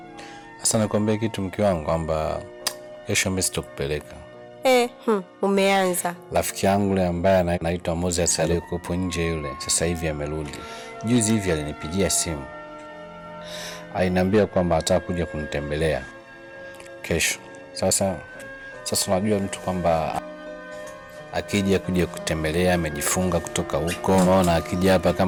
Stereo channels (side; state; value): both; identical; correlation 1.00